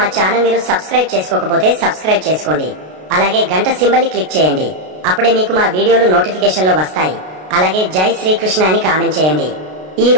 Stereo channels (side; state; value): left; late; 33 ms